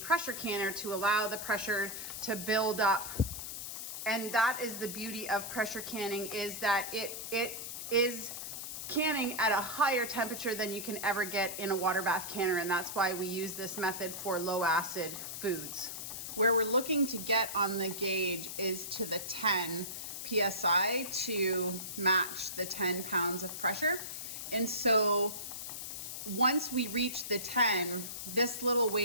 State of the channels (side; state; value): left; noise; hiss, 7 dB below the sound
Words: canner to allow the pressure to build up. And that is the beauty of pressure canning, is that it is canning at a higher temperature than you can ever get in a water bath canner. And that's why we use this method for low acid foods. Where we're looking to get on the gauge is to the 10 PSI to match the 10 pounds of pressure. And so once we reach the 10, this little